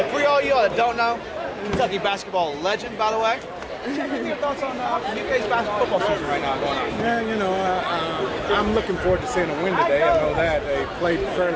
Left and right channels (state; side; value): identical; both; correlation 1.00